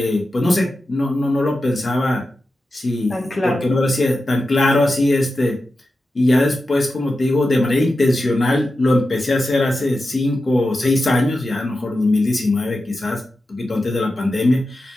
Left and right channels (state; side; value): normal; both; correlation 0.91